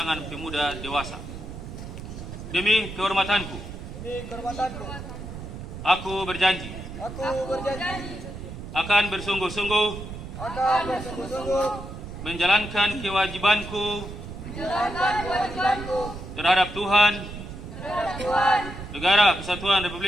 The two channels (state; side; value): noise; right; rumble, 10 dB below the sound